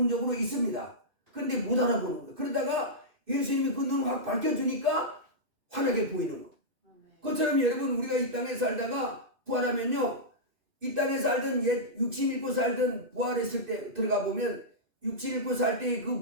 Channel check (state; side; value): late; left; 2.6 ms